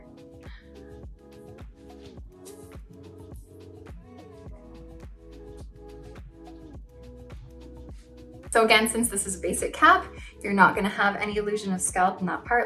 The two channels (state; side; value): identical; both; correlation 1.00